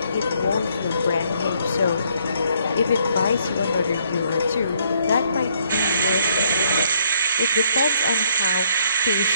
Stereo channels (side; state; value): both; inverted; correlation -0.68